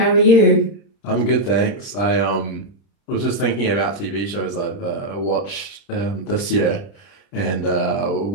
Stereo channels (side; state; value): right; late; 30 ms